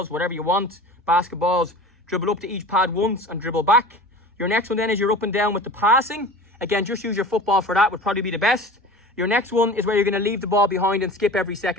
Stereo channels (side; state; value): both; normal; correlation 0.38